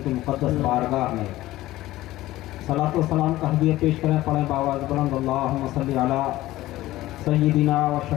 کی مقدس بارگاہ میں صلاۃ و سلام کا ہدیہ پیش کریں، پڑھیں باواز بلند اللہم صلی علی سیدنا و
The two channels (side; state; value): right; quieter; 16.4 dB